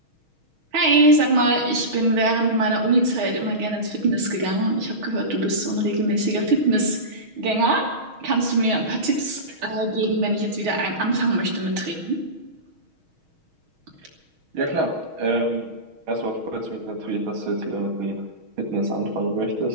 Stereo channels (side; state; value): left; late; 6.3 ms